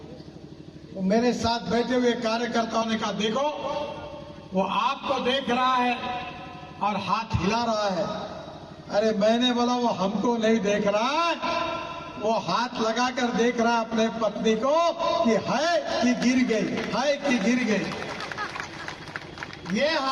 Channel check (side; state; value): both; identical; correlation 1.00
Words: तो मेरे साथ बैठे हुए कार्यकर्ताओं ने कहा, देखो वो आपको देख रहा है और हाथ हिला रहा है। अरे मैंने बोला वो हमको नहीं देख रहा है, वो हाथ लगाकर देख रहा है अपने पत्नी को कि है कि गिर गई, है कि गिर गई। ये